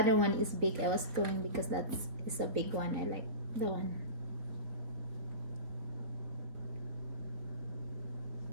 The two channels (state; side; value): late; left; 4.1 ms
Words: one is big. I was going because that is a big one. I like the one.